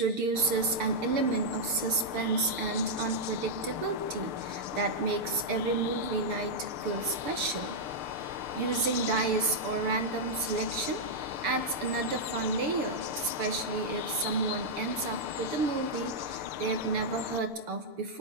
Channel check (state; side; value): late; left; 6.9 ms